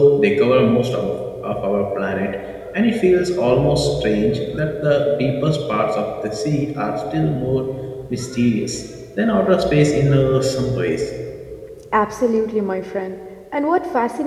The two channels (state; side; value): identical; both; correlation 1.00